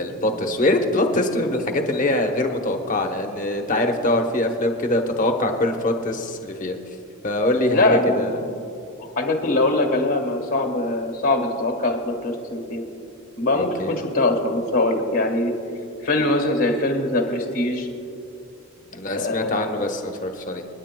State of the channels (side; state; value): both; normal; correlation 0.14